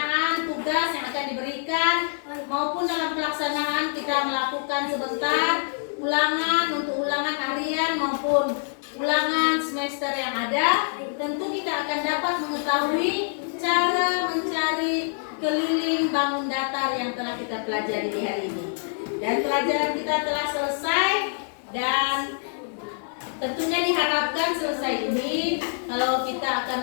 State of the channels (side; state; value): right; silent; digital silence